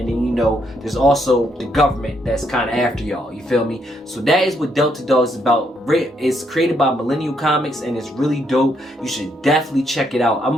then there's also the government that's kind of after y'all, you feel me? So that is what Delta Dogs is about. It's created by Millennial Comics, and it's really dope. You should definitely check it out. I'm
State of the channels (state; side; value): normal; both; correlation 0.74